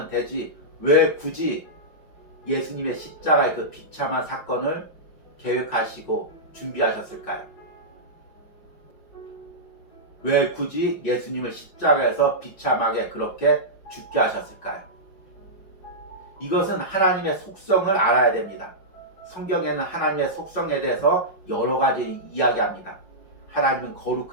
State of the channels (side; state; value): right; late; 5.3 ms